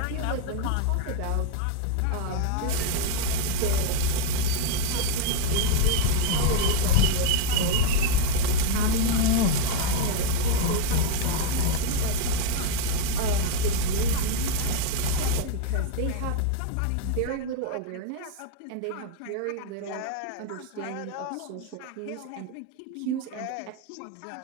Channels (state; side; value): different; both; correlation 0.01